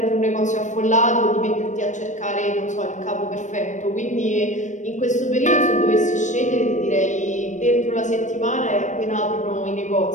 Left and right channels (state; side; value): late; right; 0.35 ms